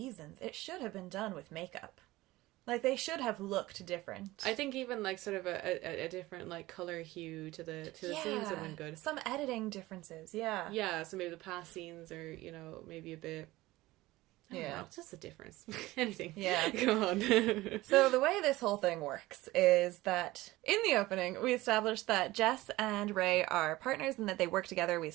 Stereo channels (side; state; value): left; quieter; 18.5 dB